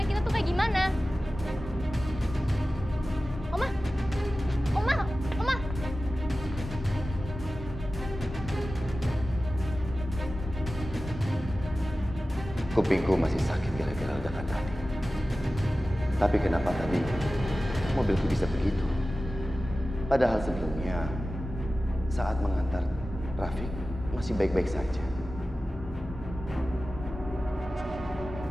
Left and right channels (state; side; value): normal; both; correlation 0.95